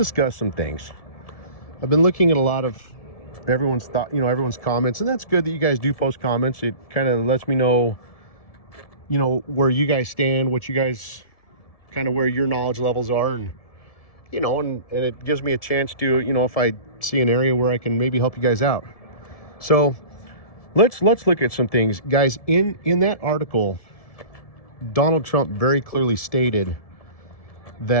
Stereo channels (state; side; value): late; right; 1.7 ms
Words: some things. I've been looking at a lot of everyone's thought, everyone's comments, and that's good that you guys do post comments. It kind of lets me know, where you guys stand, what you guys kind of where your knowledge levels are, and and it gives me a chance to, if I see an area where I can maybe help you guys out. So let's look at some things, guys. In that article, Donald Trump very clearly stated